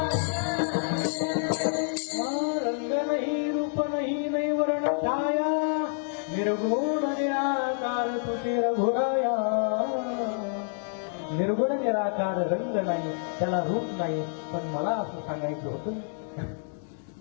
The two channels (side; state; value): right; silent; digital silence